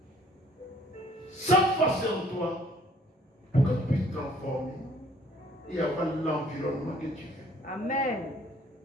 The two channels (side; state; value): both; normal; correlation 0.59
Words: Cette force est en toi pour que tu puisses transformer et avoir l'environnement que tu veux. Amen.